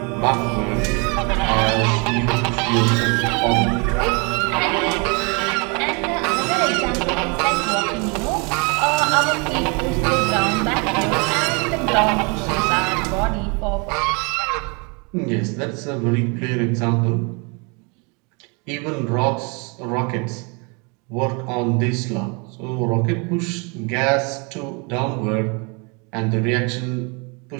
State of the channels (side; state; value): left; quieter; 32.2 dB